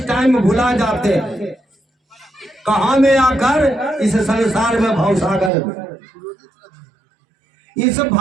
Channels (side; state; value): left; drops out; at 5.5 s